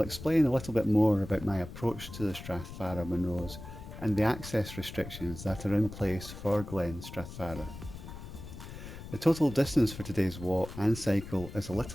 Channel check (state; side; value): noise; left; rumble, 12 dB below the sound